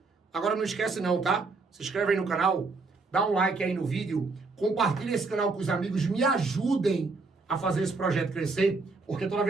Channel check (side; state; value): left; quieter; 3.9 dB